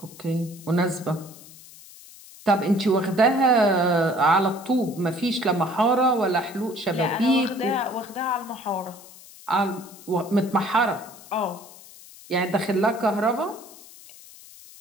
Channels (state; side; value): noise; left; hiss, 20 dB below the sound